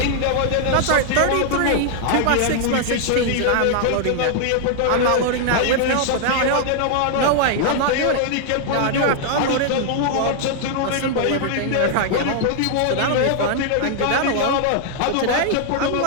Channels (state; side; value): different; both; correlation 0.00